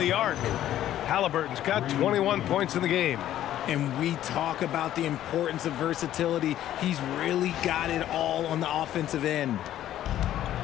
arc. Haliburton's got 21 points in the game. And we talk about the importance of versatility. He's really got it all on the offensive end.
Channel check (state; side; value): quieter; right; 12.3 dB